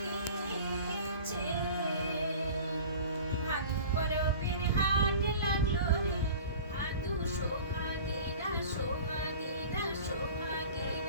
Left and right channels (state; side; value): inverted; both; correlation -0.41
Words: ভাদু পরবের হাট লাগলো রে ভাদু সোহাগীরা সোহাগীরা